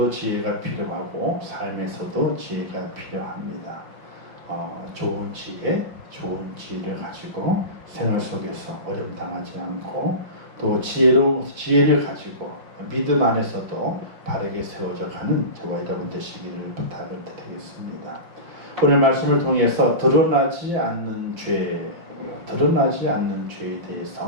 지혜가 필요하고 삶에서도 지혜가 필요합니다. 좋은 지혜를 가지고 생활 속에서 어려움 당하지 않고 또 지혜를 가지고 믿음 안에서도 바르게 세워져 가는 저와 여러분 되시기를 부탁을 드리겠습니다. 오늘 말씀을 통해서 드러나지 않는 죄에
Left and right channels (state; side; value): late; left; 5.8 ms